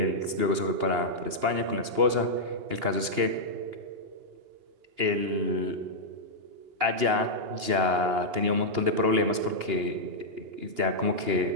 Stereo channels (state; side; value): late; left; 2.8 ms